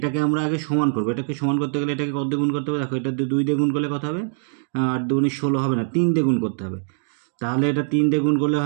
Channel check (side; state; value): left; silent; digital silence